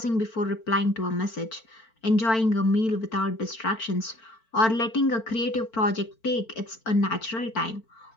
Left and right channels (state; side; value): late; right; 4.5 ms